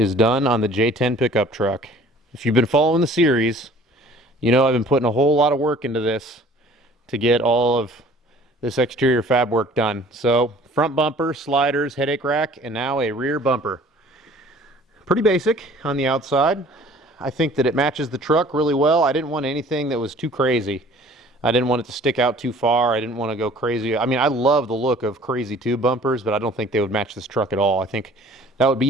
done on the J10 pickup truck. If you've been following the series, you know I've been putting a whole lot of work into this to get all of this exterior fab work done. So front bumper, sliders, headache rack, and now a rear bumper. Pretty basic on the outside. I think that it matches the truck really well. I didn't want anything that was too crazy. I didn't want it to stick out too far. I didn't want to go crazy. I mean, I love the look of crazy tube bumpers, but I don't think they would match this truck at all. I think that would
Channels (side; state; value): both; normal; correlation 0.51